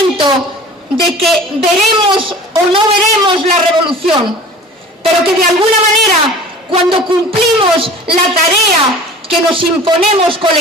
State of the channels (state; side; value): normal; both; correlation 0.42